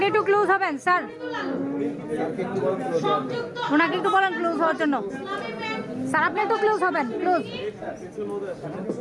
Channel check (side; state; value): both; identical; correlation 1.00